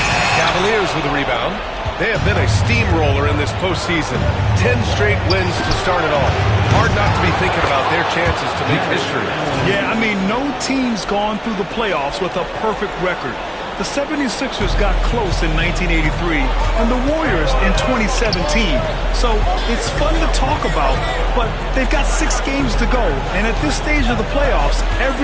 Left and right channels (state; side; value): identical; both; correlation 1.00